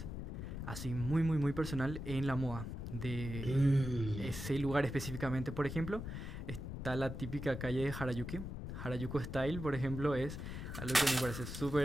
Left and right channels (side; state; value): left; noise; rumble, 7 dB below the sound